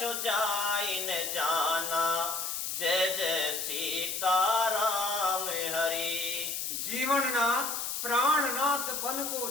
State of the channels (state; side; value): noise; left; hiss, 3 dB below the sound